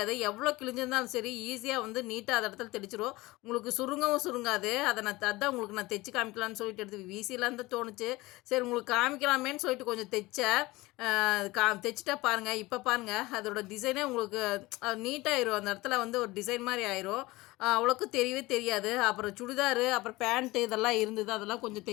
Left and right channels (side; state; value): right; quieter; 20.5 dB